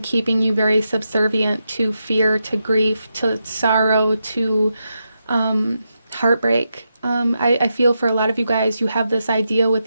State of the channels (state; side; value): inverted; both; correlation -0.86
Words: keeping you very subservient to fear, to grief, to sorrow, to heartbreak. I feel for a lot of you guys, you have this idea